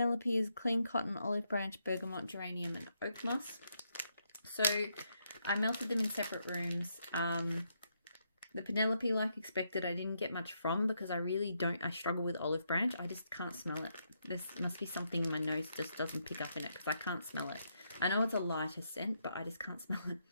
is clean cotton, olive branch, bergamot, geranium, and oak moss. So I melted them in separate rooms. The Penelope, like expected, I didn't get much from because I struggle with olive branch. I just can't smell it. This must be something my nose just doesn't pick up in it because I can't smell it. I know it's a lighter scent, but I just can't smell it.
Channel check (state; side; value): inverted; both; correlation -0.78